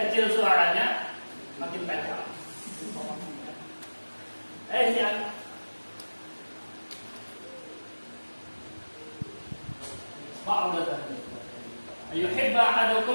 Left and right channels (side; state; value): both; inverted; correlation -1.00